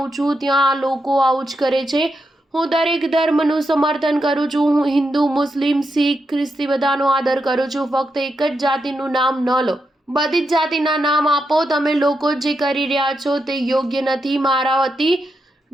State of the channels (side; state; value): both; normal; correlation 0.84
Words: છું ત્યાં આ લોકો આવું જ કરે છે. હું દરેક ધર્મનું સમર્થન કરું છું. હું હિન્દુ, મુસ્લિમ, શીખ, ખ્રિસ્તી બધાનો આદર કરું છું. ફક્ત એક જ જાતિનું નામ ન લો. બધી જ જાતિના નામ આપો. તમે લોકો જે કરી રહ્યા છો તે યોગ્ય નથી. મારા વતી